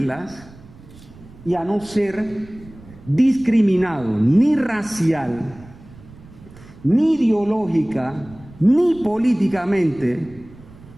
y a no ser discriminado ni racial, ni ideológica, ni políticamente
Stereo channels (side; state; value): right; noise; rumble, 21 dB below the sound